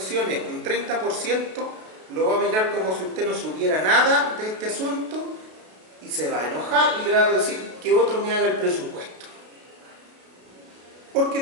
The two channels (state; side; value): late; left; 32 ms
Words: un 30%, lo va a mirar como si usted no supiera nada de este asunto y se va a enojar y le va a decir que otro me haga el presupuesto. Porque